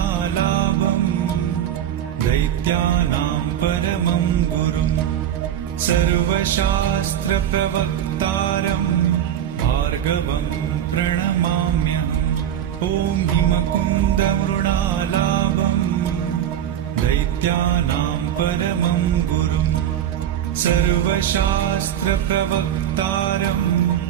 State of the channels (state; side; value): quieter; left; 10.5 dB